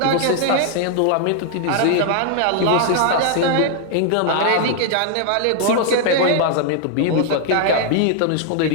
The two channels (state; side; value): different; both; correlation 0.00